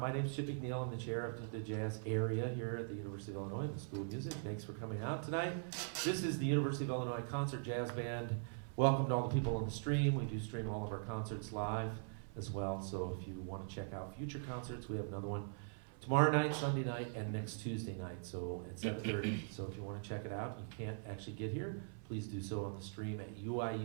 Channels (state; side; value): silent; left; 50 dB below the other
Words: name's Chip McNeil. I'm the chair of the jazz area here at the University of Illinois, the School of Music. Thanks for coming out tonight. This is the University of Illinois Concert Jazz Band. Welcome to all the people on the stream. We do stream all of our concerts live as well. So if you want to check out future concerts, we have another one tomorrow night, Sunday night, and next Tuesday night. So at 7:30. So if you want to check it out, you can't actually get here, please do so on the stream at